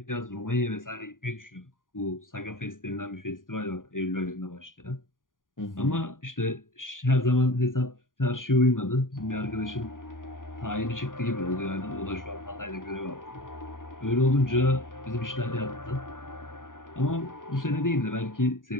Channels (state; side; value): late; right; 0.89 ms